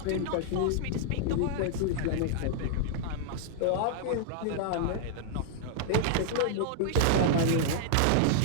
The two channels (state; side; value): different; both; correlation -0.01